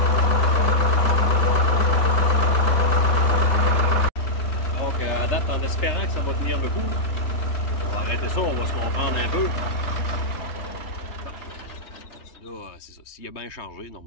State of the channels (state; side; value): late; right; 3.3 ms